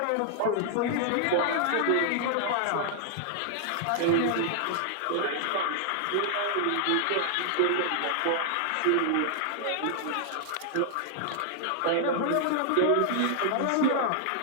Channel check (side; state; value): both; different; correlation 0.00